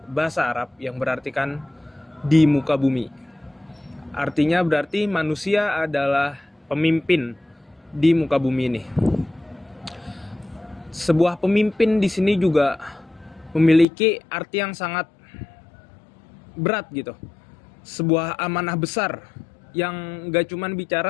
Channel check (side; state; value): right; drops out; at 13.9 s